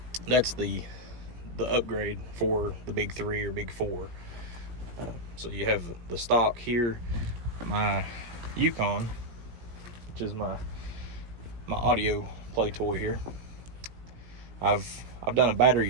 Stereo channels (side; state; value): left; late; 17 ms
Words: that's the upgrade for the Big 3 or Big 4. So you have the stock here, my Yukon, which is my audio play toy here. I've done a